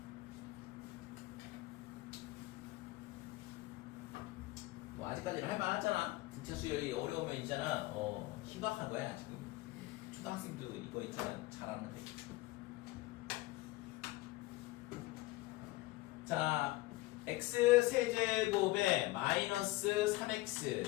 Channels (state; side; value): quieter; right; 19.9 dB